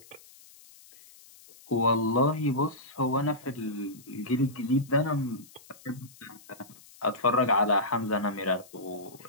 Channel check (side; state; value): left; noise; hiss, 23 dB below the sound